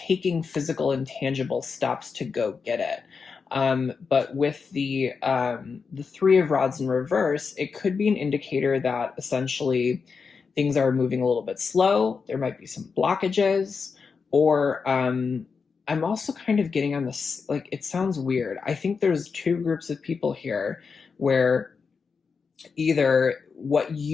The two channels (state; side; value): quieter; right; 5.3 dB